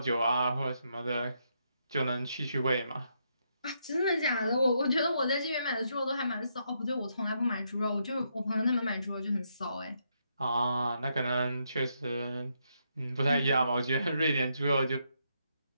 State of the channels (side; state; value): both; inverted; correlation -0.78